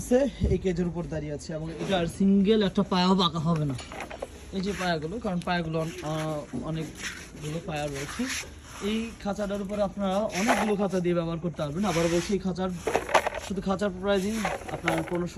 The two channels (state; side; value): identical; both; correlation 1.00